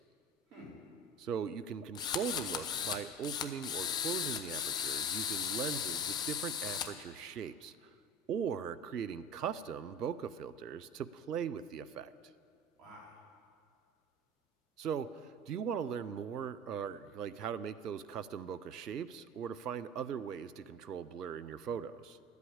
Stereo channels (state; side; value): normal; both; correlation 0.36